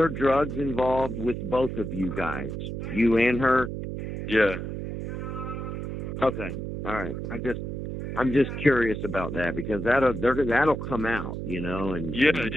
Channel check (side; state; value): right; noise; hum, 5 dB below the sound